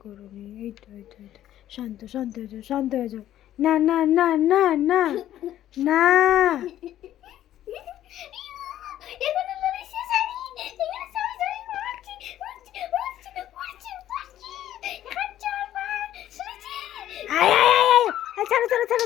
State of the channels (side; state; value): right; quieter; 12.4 dB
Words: করবি। এই তো এই তো এই তো, শান্ত শান্ত হয়ে যাও, শান্ত হয়ে যাও। না না না না না না, ছাড়ো ছাড়ো ছাড়ো